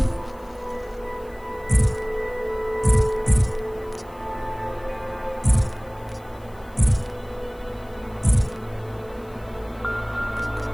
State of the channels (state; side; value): noise; left; hiss, 28 dB below the sound